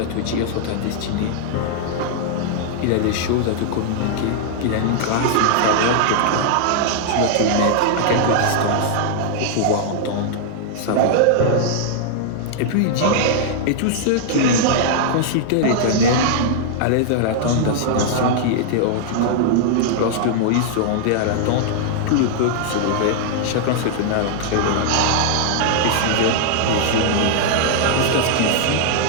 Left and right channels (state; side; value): different; both; correlation -0.01